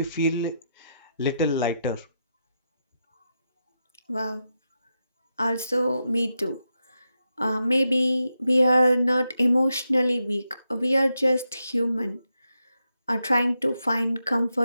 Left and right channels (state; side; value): inverted; both; correlation -0.86